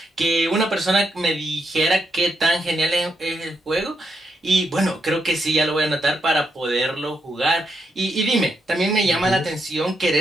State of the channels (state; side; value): normal; both; correlation 0.81